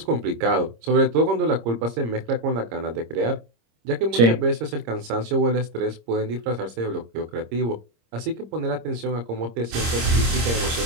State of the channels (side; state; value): left; late; 26 ms